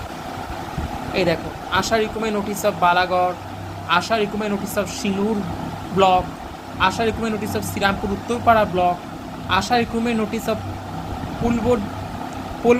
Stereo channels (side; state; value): both; identical; correlation 1.00